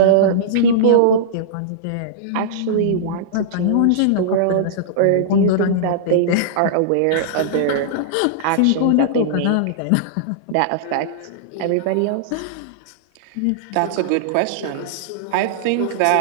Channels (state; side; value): different; both; correlation -0.02